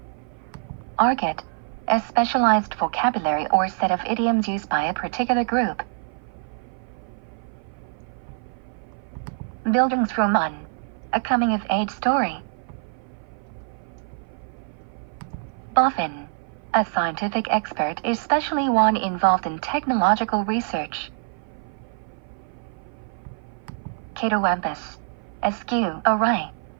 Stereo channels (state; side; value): silent; left; 56 dB below the other